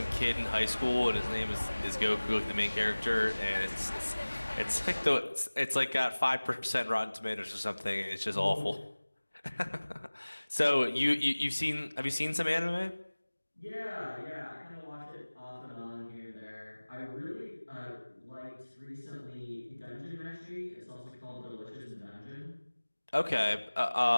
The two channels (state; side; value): inverted; both; correlation -1.00